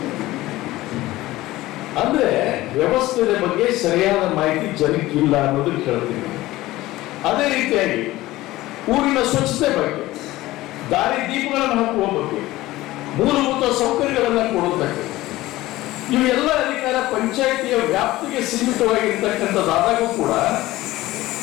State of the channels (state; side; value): quieter; right; 17.4 dB